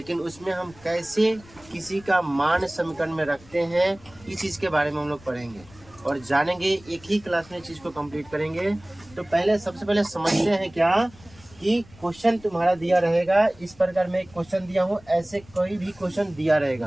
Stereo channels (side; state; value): left; noise; rumble, 24 dB below the sound